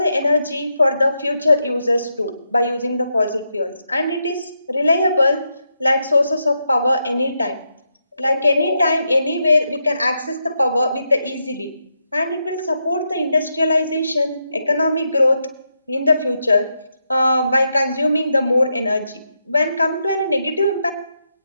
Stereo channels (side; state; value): both; inverted; correlation -0.83